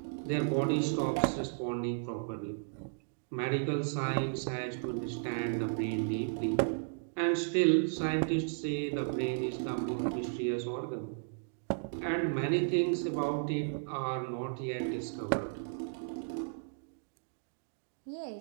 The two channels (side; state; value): left; silent; digital silence